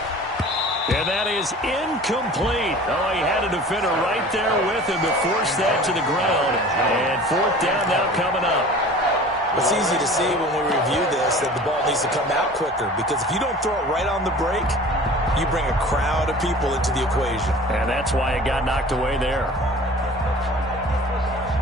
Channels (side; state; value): both; normal; correlation 0.43